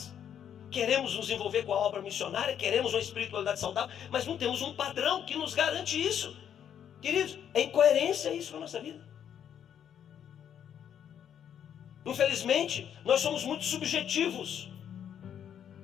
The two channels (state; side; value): quieter; right; 9.1 dB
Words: queremos nos envolver com a obra missionária, queremos uma espiritualidade saudável, mas não temos um padrão que nos garante isso. Queridos, é incoerência isso na nossa vida. Infelizmente, nós somos muito subjetivos.